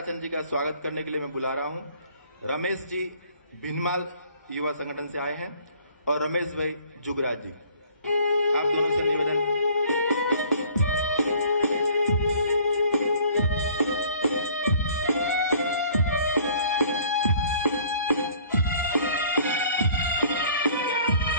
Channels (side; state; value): both; inverted; correlation -0.55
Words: जी का स्वागत करने के लिए मैं बुला रहा हूं। रमेश जी भिनमाल युवा संगठन से आए हैं और रमेश भाई जुगराज जी। आप दोनों से निवेदन।